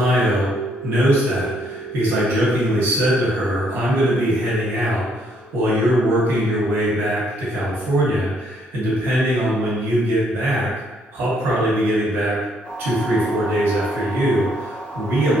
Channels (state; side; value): normal; both; correlation 0.70